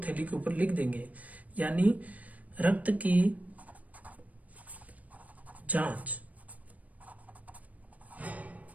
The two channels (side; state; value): left; late; 0.071 ms